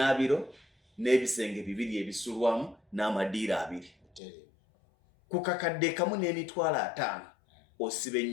n'ebisenge 2 ebisulwamu n'amadiira 2 ku kakadde kamu n'emitwalo 5 osiba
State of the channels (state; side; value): drops out; right; at 4.2 s